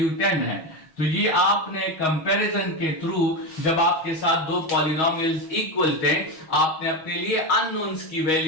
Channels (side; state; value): right; late; 6.3 ms